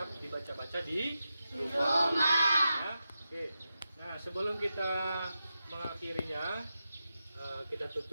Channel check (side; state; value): both; inverted; correlation -0.90